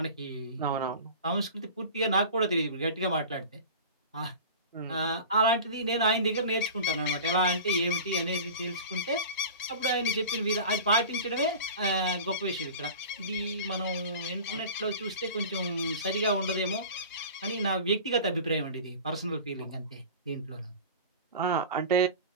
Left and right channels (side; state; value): both; inverted; correlation -0.36